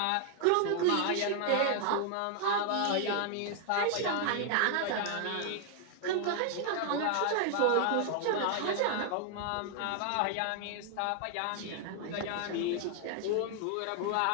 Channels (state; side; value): different; both; correlation 0.00